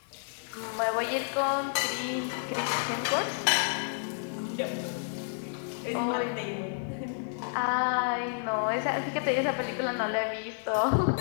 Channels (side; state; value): right; silent; digital silence